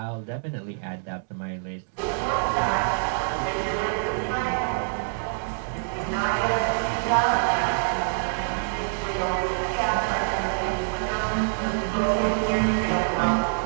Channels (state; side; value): silent; left; digital silence